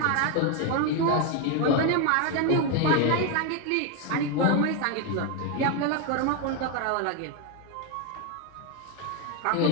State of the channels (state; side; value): different; both; correlation 0.01